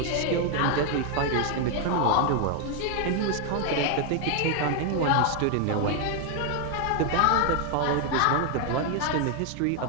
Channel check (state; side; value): different; both; correlation 0.01